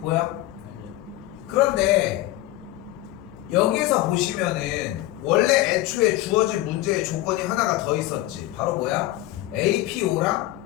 보여? 그런데 여기에서 보시면은 원래 애초에 주어진 문제의 조건이 하나가 더 있었지. 바로 뭐야? APO랑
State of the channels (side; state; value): right; quieter; 16.1 dB